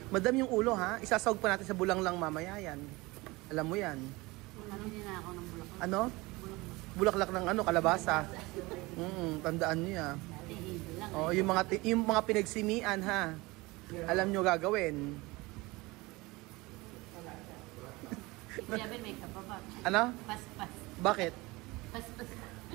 Madam yung ulo ha, isasawag pa natin sa bulang lang mamaya yan. Alam mo yan. Hindi na ako ng bulak. Ano? Bulaklak ng ano, kalabasa. Tandaan niyo ya. Oh, yung mga pinagsimian ha. Alam niyo gagawin. Sabi may kapaba. Ano? Pas-pas. Bakit? Pas-pas.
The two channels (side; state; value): left; quieter; 22.5 dB